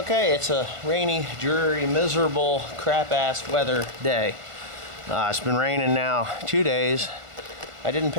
it's a rainy, dreary, miserable, crap-ass weather day. It's been raining now 2 days. I didn't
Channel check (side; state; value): left; late; 1.4 ms